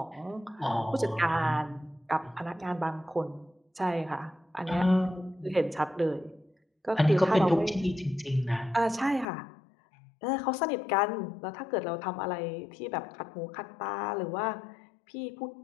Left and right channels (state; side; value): drops out; right; at 9.2 s